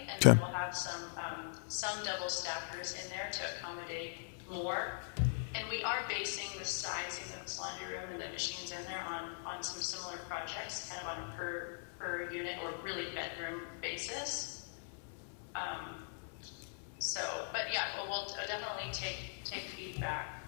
and then we'll have some double stackers in there to accommodate more. And we are basing the sizing of this laundry room and the machines in there on some similar projects, kind of on a per unit or really bedroom basis. But yeah, we'll definitely take feedback.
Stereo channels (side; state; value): right; silent; 51 dB below the other